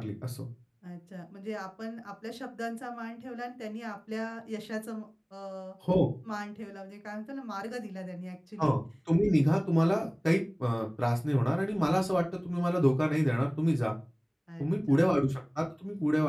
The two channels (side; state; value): both; identical; correlation 1.00